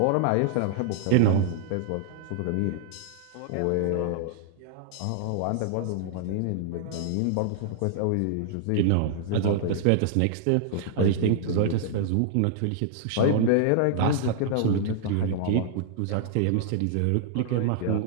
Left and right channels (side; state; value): both; different; correlation -0.01